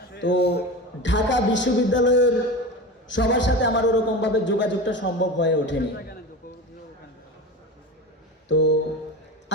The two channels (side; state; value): both; normal; correlation 0.28